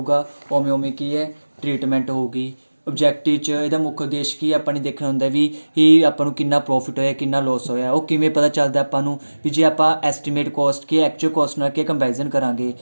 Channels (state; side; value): inverted; both; correlation -1.00